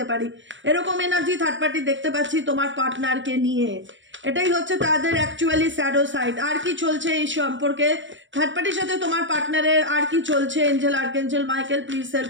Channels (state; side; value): late; left; 0.55 ms